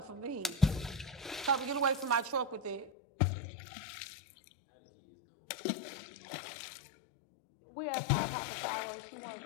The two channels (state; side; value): drops out; right; at 2.9 s